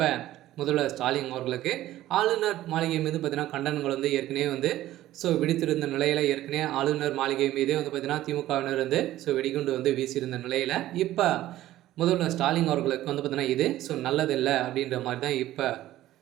முதல்வர் ஸ்டாலின் அவர்களுக்கு ஆளுநர் மாளிகை மீது பார்த்தீங்கன்னா கண்டனங்கள் ஏற்கனவே ஸோ விடுத்திருந்த நிலையில் ஏற்கனவே ஆளுநர் மாளிகை மீதே பார்த்தீங்கன்னா திமுகவினர் ஸோ வெடிகுண்டு வீசியிருந்த நிலையில் இப்போ முதல்வர் ஸ்டாலின் அவர்களுக்கு பார்த்தீங்கன்னா இது ஸோ நல்லதில்லை அப்படின்ற மாதிரி தான் இப்போ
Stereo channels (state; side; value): quieter; left; 14.5 dB